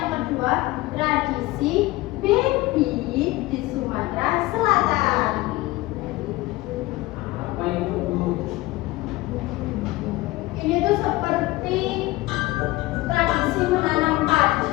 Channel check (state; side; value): quieter; right; 19.6 dB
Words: kedua, tradisi baby di Sumatera Selatan. Apa itu? Ini tuh seperti tradisi menanam